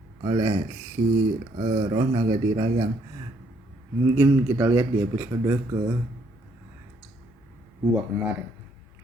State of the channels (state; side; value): normal; both; correlation 0.69